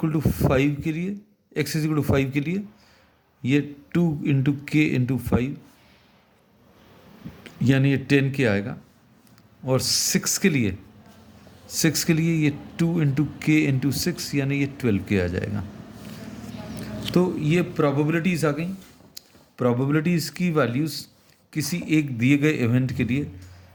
टू 5 के लिए, x इक्वल टू 5 के लिए ये 2 इंटू के इंटू 5 यानी ये 10k आएगा, और 6 के लिए ये 2 इंटू के इंटू 6 यानी ये 12k आ जाएगा। तो ये प्रोबेबिलिटीज़ आ गई। प्रोबेबिलिटीज़ की वैल्यूज़ किसी एक दिए गए इवेंट के लिए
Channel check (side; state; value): both; identical; correlation 1.00